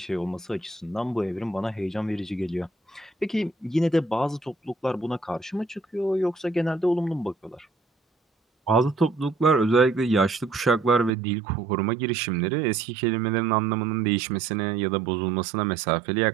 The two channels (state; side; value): drops out; left; at 11.1 s